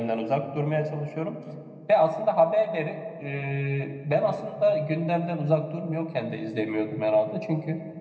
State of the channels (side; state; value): both; identical; correlation 1.00